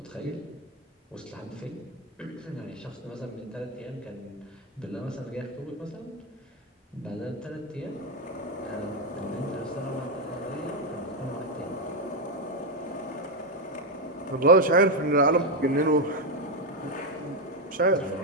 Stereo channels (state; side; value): normal; both; correlation 0.06